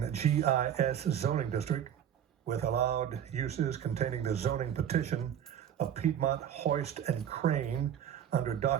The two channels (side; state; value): left; quieter; 9.6 dB